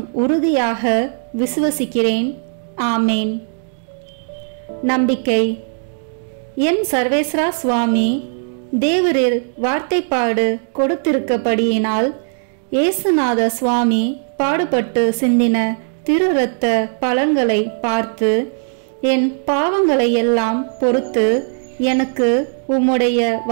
உறுதியாக விசுவசிக்கிறேன். ஆமேன். நம்பிக்கை. என் சர்வேஸ்வரா சுவாமி, தேவரில் வார்த்தைப்பாடு கொடுத்திருக்கப்படியினால் இயேசுநாத சுவாமி பாடுபட்டு சிந்தின திரு இரத்த பலன்களை பார்த்து என் பாவங்களை எல்லாம் பொறுத்து எனக்கு உம்முடைய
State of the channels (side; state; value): left; silent; digital silence